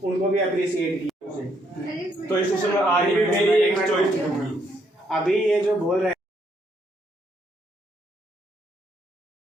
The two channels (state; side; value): normal; both; correlation 0.73